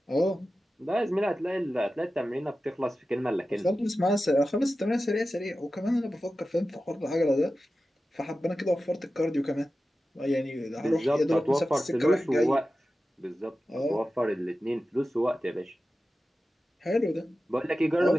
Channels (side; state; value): both; normal; correlation 0.94